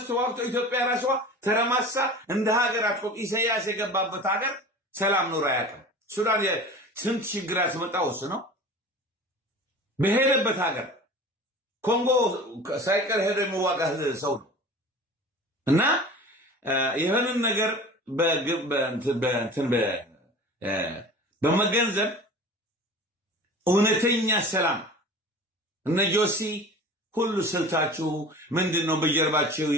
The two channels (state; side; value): normal; both; correlation 0.38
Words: ተዋግቶ ኢትዮጵያ ራሷ ተረማሳ እንደ ሀገር አትቆም። ኢሳያስ የገባበት ሀገር ሰላም ኖሮ አያውቅም። ሱዳን ስንት ችግር ያስመጣው እሱ ነው። በሄደበት ሀገር ኮንጎ ሳይቀር ሄዶ የሚዋጋ ሰው ነው። እና ይህንን ነገር በመገንዘብ እውነተኛ ሰላም እነ ጆሲ ሁሉ ስልታችሁ ምንድን ነው? በጀርባችሁ